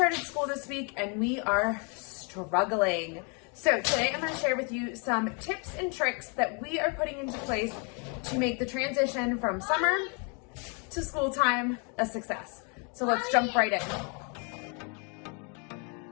school this week and we are struggling. So today I'm going to share with you some tips and tricks that we are putting into place to make the transition from summer to school time a success. So let's jump right in.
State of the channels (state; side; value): quieter; right; 35.7 dB